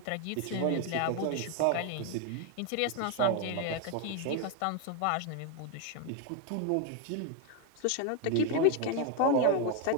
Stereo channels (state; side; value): different; both; correlation 0.01